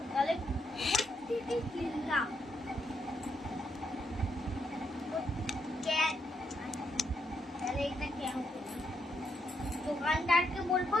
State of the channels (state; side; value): normal; both; correlation 0.79